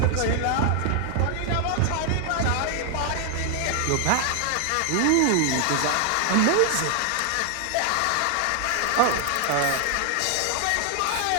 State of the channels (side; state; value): both; different; correlation 0.00